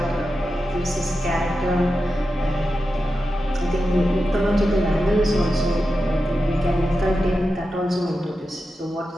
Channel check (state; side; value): normal; both; correlation 0.91